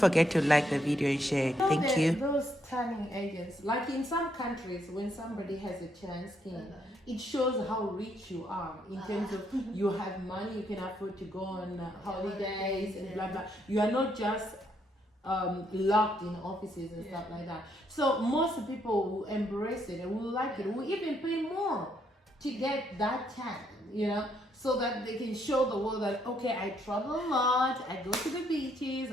to like the video and share. Thank you. Those turning agents, like in some countries, when somebody has a tan skin, it shows how rich you are in terms of you have money, you can afford to go on holidays and blah blah. You are not just locked in offices and stuff like that. So most people will embrace it and will like it, will even pay more to get that tan, you know, so that they can show the world that, okay, I travel a lot, I go to the beaches,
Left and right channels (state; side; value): normal; both; correlation 0.74